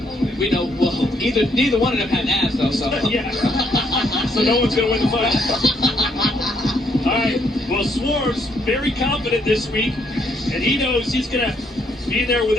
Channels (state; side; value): normal; both; correlation 0.71